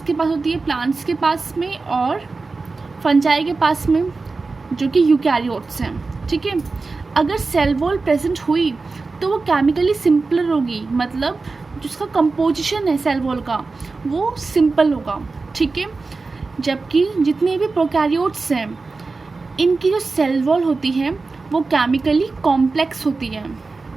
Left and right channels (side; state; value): left; quieter; 3.9 dB